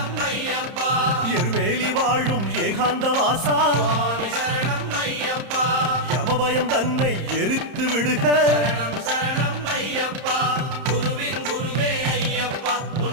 ஐயப்பா எருமேலி வாழும் ஏகாந்த வாசா சுவாமி சரணம் ஐயப்பா யமபயம் தன்னை எரித்து விடுக சரணம்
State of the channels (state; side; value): late; left; 31 ms